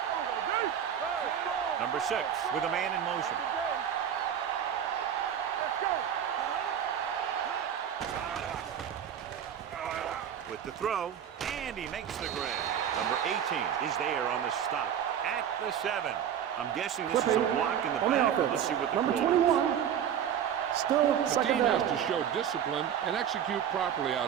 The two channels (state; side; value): quieter; left; 9.1 dB